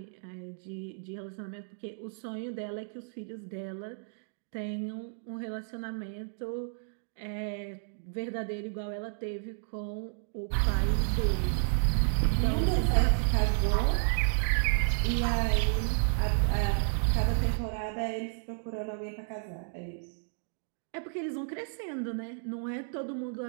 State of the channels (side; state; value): left; silent; digital silence